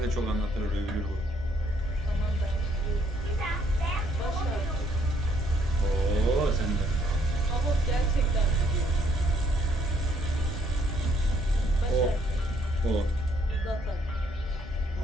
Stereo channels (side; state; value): both; normal; correlation 0.68